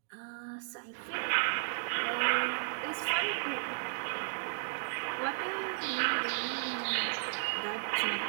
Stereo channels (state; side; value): silent; left; digital silence